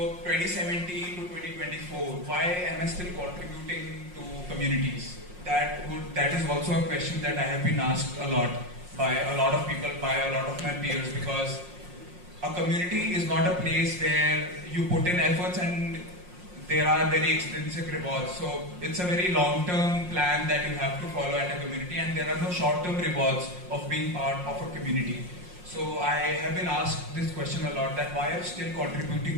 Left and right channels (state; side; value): late; left; 5.6 ms